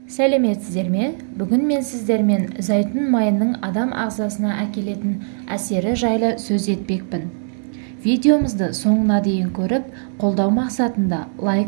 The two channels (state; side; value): silent; left; digital silence